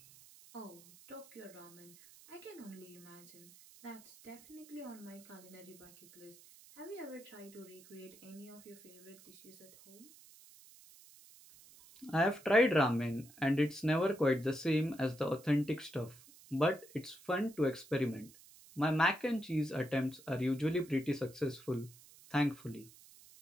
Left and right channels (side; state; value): right; noise; hiss, 22 dB below the sound